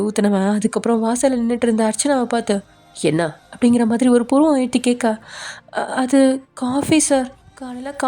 ஊற்றினவன் அதுக்கப்புறம் வாசலில் நின்றுட்டு இருந்த அர்ச்சனாவை பார்த்து என்ன அப்படிங்கிற மாதிரி ஒரு புருவம் எழுத்தி கேட்க, அது காஃபி சார், காலையில்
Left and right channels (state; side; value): identical; both; correlation 1.00